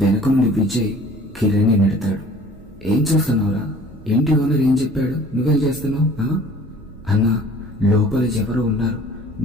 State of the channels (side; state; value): both; normal; correlation 0.49